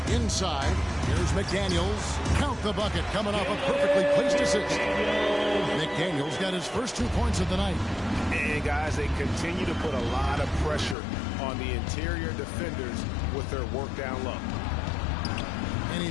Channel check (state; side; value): drops out; right; at 11.0 s